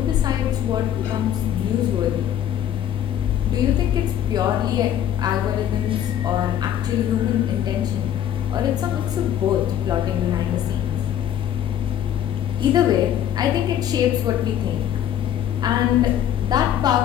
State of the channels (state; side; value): quieter; right; 10.5 dB